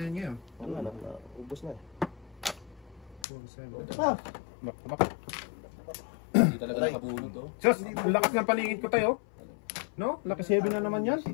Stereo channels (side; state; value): right; drops out; at 3.2 s